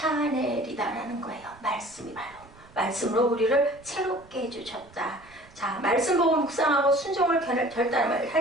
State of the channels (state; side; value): noise; right; rumble, 25 dB below the sound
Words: 거예요. 말씀이 바로. 말씀으로 우리를 새롭게 해주셨다. 자, 말씀 보고 묵상하고 순종을